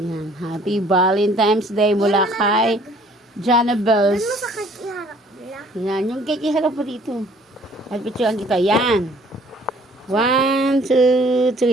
Happy Valentine's Day mula kay Jana Bells. Yan, yung cake iharap mo dito. At picturean kita. Yan. 1, 2,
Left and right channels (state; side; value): normal; both; correlation 0.57